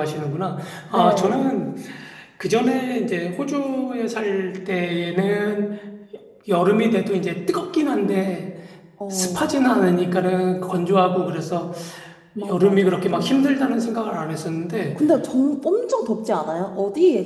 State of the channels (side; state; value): both; identical; correlation 1.00